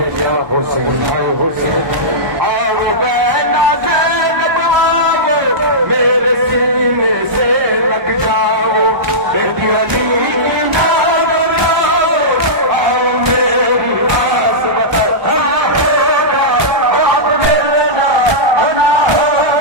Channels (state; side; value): late; left; 1.2 ms